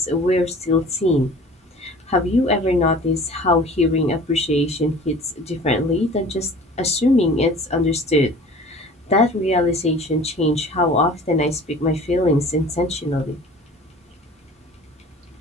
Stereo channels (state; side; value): normal; both; correlation 0.44